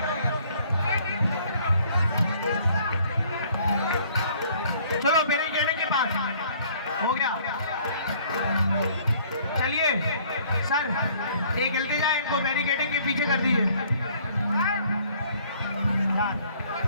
चलो बैरिकेडिंग के पास हो गया, चलिए सर एक जल्दी जाए, इनको बैरिकेडिंग के पीछे कर दीजिए।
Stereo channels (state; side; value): inverted; both; correlation -0.59